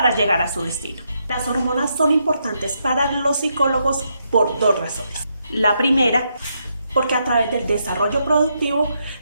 llegar a su destino. Las hormonas son importantes para los psicólogos por dos razones. La primera, porque a través del desarrollo productivo,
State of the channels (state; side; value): inverted; both; correlation -0.79